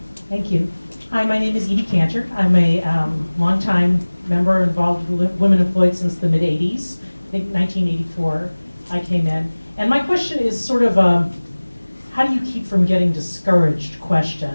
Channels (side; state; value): both; inverted; correlation -1.00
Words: Thank you. Hi, my name is Edie Cantor. I'm a longtime member involved with women employed since the mid-'80s. I think 1984 I came in. And my question is sort of how do you keep from getting discouraged question?